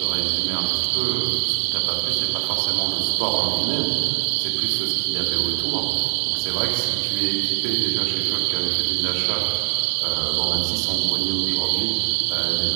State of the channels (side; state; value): left; silent; digital silence